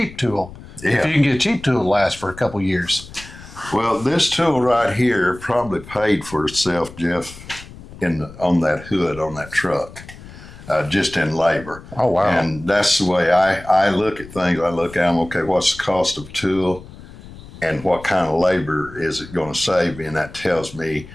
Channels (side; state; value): left; noise; rumble, 17 dB below the sound